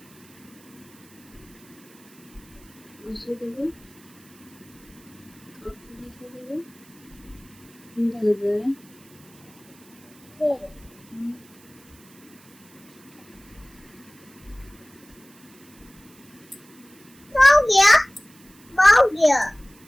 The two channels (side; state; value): right; noise; hiss, 25 dB below the sound